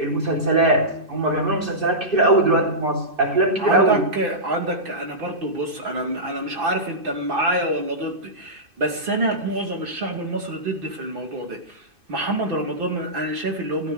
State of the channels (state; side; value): late; left; 2.5 ms